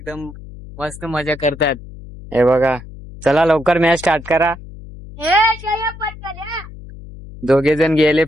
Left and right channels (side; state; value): left; noise; hum, 16 dB below the sound